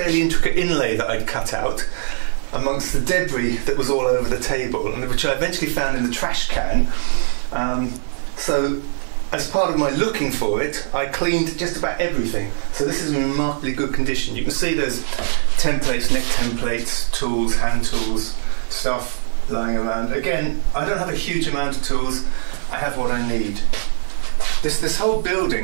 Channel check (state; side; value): silent; left; digital silence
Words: intricate inlay that I'd cut out amongst the debris that was all over the table, and which I eventually found in the trash can. So as part of my looking for it, I cleaned just about everything. So this is in remarkably good condition. You can see there's templates, neck templates, tools, hand tools, stuff lying around. Again, I don't have a huge amount of tools. I have what I need. This whole